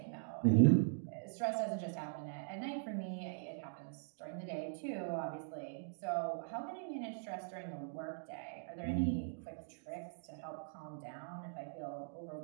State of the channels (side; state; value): left; silent; digital silence